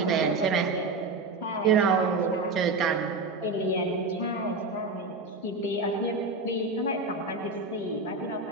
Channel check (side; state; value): left; quieter; 3.5 dB